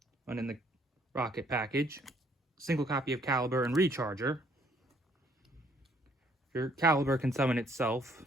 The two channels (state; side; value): normal; both; correlation 0.65